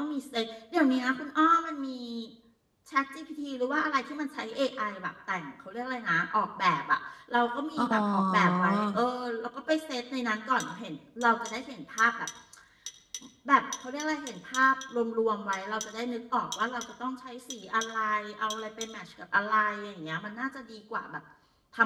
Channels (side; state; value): both; identical; correlation 1.00